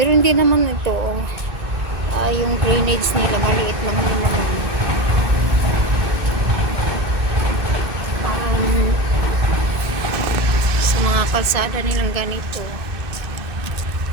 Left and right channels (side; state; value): left; late; 2.6 ms